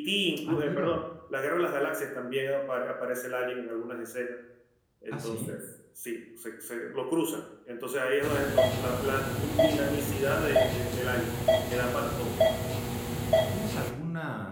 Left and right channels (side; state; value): both; identical; correlation 1.00